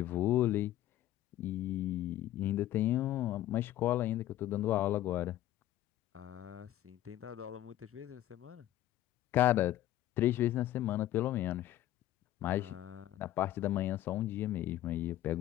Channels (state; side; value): quieter; right; 13.9 dB